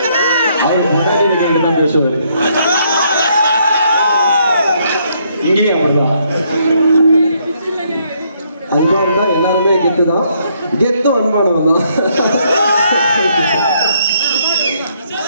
இங்கேயும் அப்படிதான். அன்பானதா எல்லாருமே கெத்து தான். கெத்தும் அன்பானவன் தான்.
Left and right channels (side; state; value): both; inverted; correlation -0.71